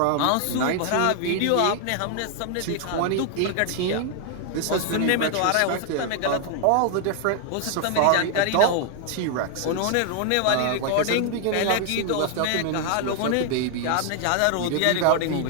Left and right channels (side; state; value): both; different; correlation 0.00